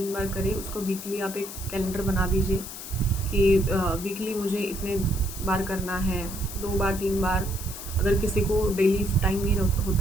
बार करें। उसको वीकली आप एक कैलेंडर बना दीजिए कि वीकली मुझे इतने बार करना है, 2 बार 3 बार। अगर किसी को डेली टाइम नहीं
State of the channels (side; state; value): left; noise; hiss, 11 dB below the sound